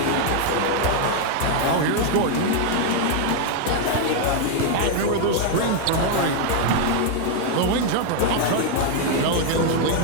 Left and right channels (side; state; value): both; different; correlation 0.01